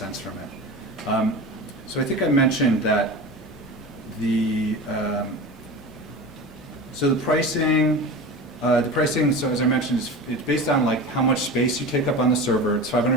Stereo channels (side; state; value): both; normal; correlation 0.30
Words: from it. So I think I mentioned that so the pricing, so as I mentioned, it's based on like how much space you take up on the server. It's